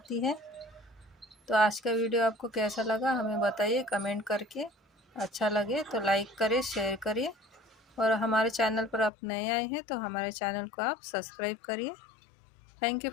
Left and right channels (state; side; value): drops out; right; at 9.1 s